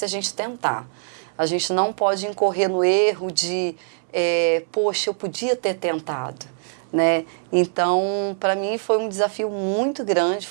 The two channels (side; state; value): left; silent; 64 dB below the other